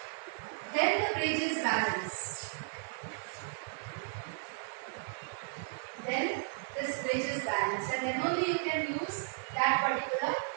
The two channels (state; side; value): silent; left; 55 dB below the other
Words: then the bridge is balanced. Then this bridge is balanced, and then only you can use that particular